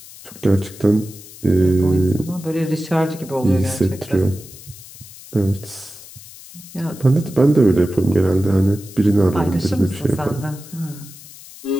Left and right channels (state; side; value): noise; left; hiss, 18 dB below the sound